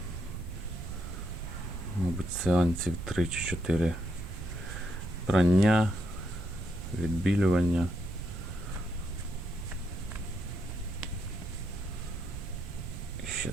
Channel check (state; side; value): noise; right; rumble, 7 dB below the sound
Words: мабуть, сеансів 3 чи 4 прання, відбілювання. І ще